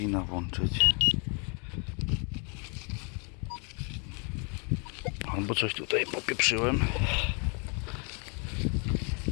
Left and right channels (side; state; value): right; quieter; 36.1 dB